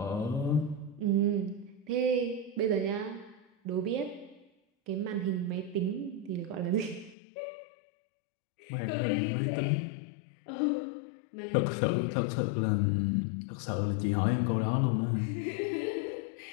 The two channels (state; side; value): drops out; right; at 7.2 s